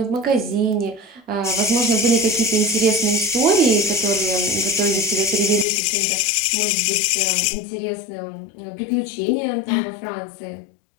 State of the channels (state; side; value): drops out; right; at 5.7 s